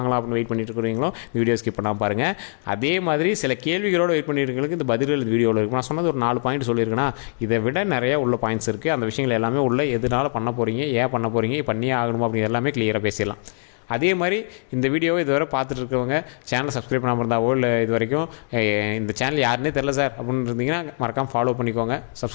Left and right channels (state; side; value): silent; right; 64 dB below the other